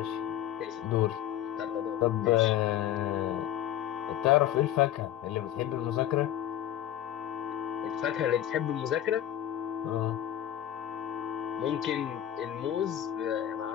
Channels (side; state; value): right; quieter; 11.8 dB